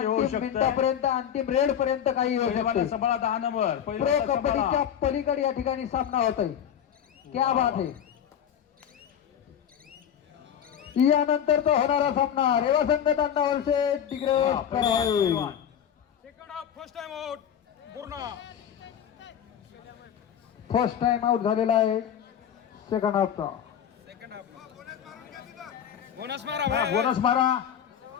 होऊ अंतिम शकते. मिनिटापर्यंत अंतिम रेड पर्यंत काही होऊ पैलवान शकते सांभाळा 10 नंबर प्रो पैलवान कबड्डीच्या सांभाळा. पलीकडे या ठिकाणी सामना होत आहे क्या बात आहे यानंतर तो होणारा सामना रेवा संघ तांडा वर्षे तिकडे हा, पैलवान. फर्स्ट टाइम आउट झालेला आहे सेकंड हाफचा हा, बोनस मारा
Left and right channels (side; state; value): right; quieter; 9.1 dB